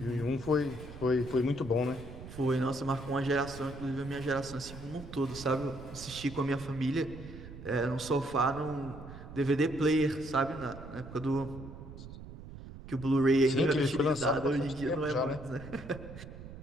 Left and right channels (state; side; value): noise; right; rumble, 13 dB below the sound